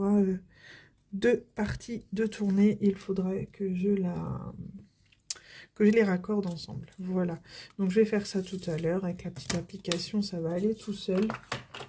2 parties de tournée, il faudrait que je les raccorde ensemble. Voilà. Donc, je vais faire ça tout à l'heure avec la petite application. Ça va aller tout seul.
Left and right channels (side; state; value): both; identical; correlation 1.00